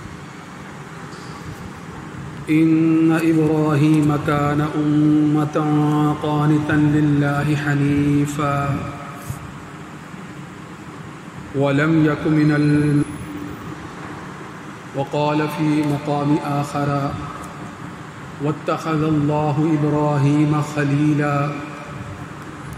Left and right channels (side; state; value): both; identical; correlation 1.00